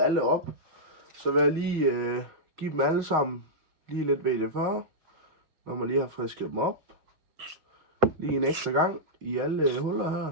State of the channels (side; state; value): left; late; 6.4 ms